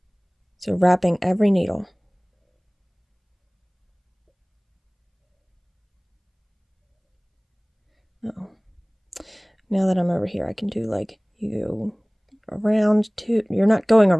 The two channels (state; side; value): identical; both; correlation 1.00